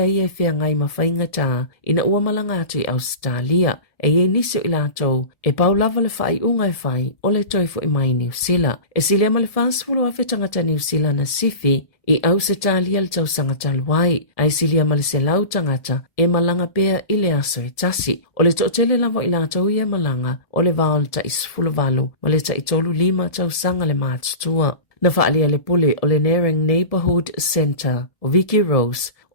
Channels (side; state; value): right; late; 1.7 ms